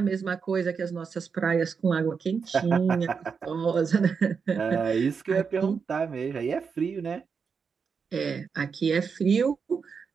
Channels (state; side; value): quieter; left; 5.8 dB